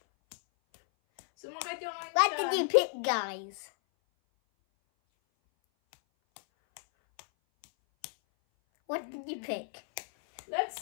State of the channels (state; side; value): silent; right; 56 dB below the other